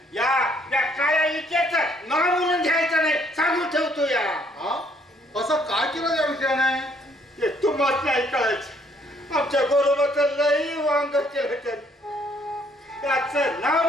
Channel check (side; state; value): both; normal; correlation 0.66